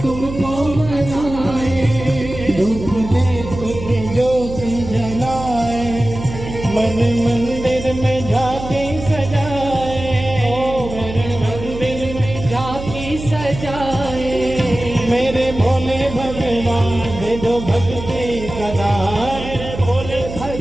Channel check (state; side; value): noise; right; hum, 10 dB below the sound